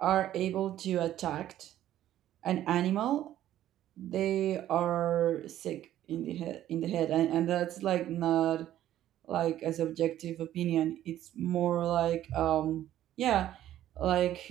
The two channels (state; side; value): quieter; left; 12.5 dB